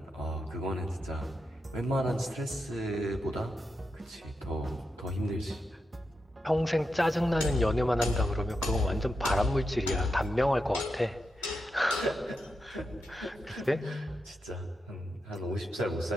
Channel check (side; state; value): both; normal; correlation 0.87